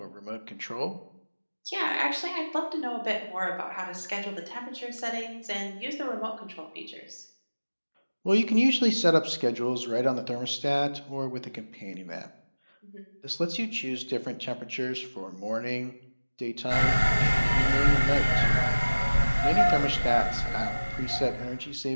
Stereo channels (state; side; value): inverted; both; correlation -1.00